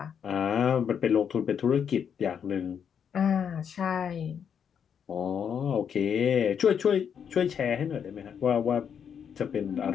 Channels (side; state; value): right; quieter; 7.7 dB